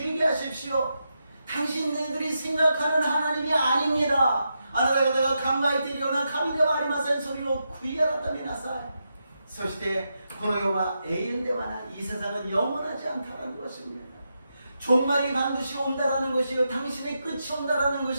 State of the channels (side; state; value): both; inverted; correlation -0.85